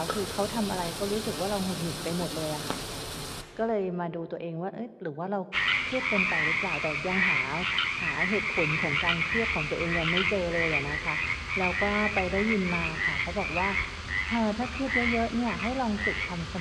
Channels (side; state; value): both; identical; correlation 1.00